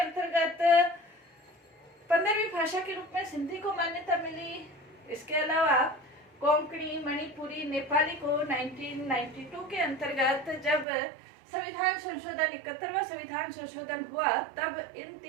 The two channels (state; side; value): drops out; left; at 10.9 s